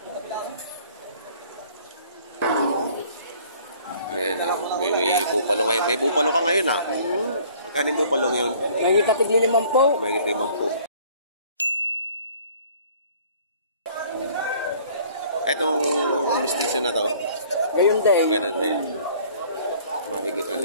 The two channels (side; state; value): both; inverted; correlation -0.54